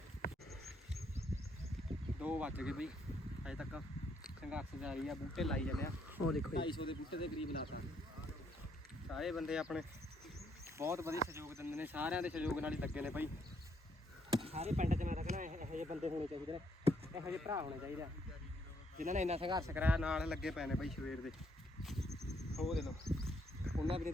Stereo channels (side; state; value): both; normal; correlation 0.72